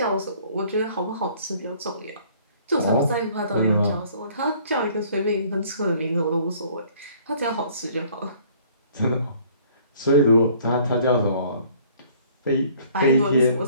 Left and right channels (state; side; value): inverted; both; correlation -0.56